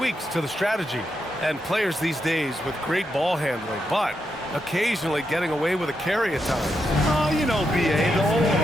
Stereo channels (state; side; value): normal; both; correlation 0.84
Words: to the strategy. And players these days with great ball handling, but occasionally getting away with a carry at times. Oh, you know, BA, the old